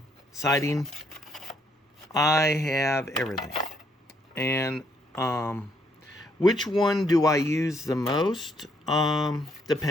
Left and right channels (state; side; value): normal; both; correlation 0.71